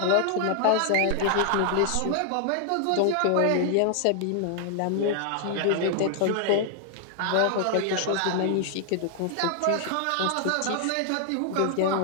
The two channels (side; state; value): both; different; correlation 0.00